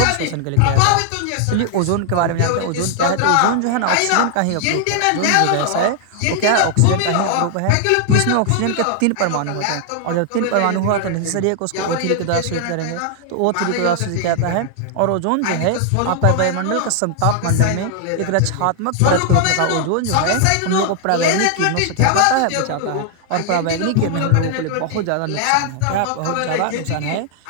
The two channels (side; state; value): both; different; correlation 0.00